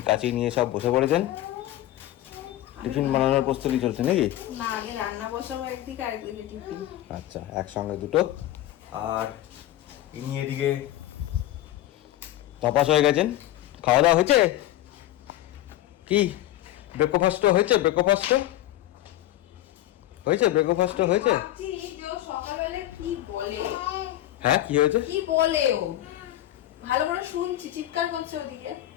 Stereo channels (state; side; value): quieter; right; 14.0 dB